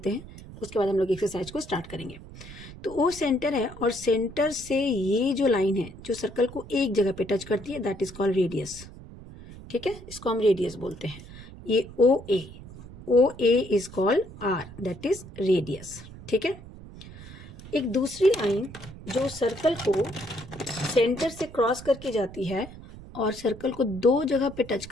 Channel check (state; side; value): noise; right; rumble, 16 dB below the sound